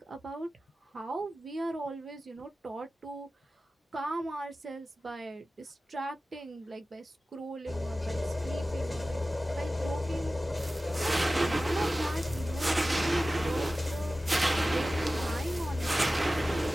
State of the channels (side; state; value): both; normal; correlation 0.95